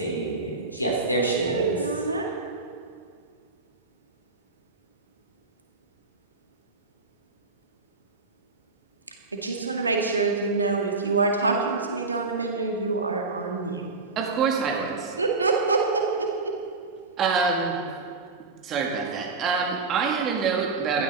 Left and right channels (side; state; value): left; quieter; 3.9 dB